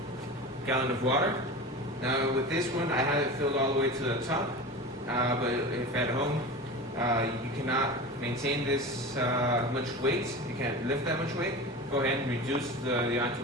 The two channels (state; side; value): normal; both; correlation 0.30